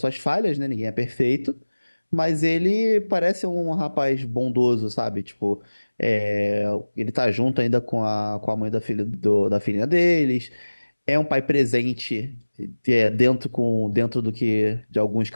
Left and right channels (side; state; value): both; inverted; correlation -1.00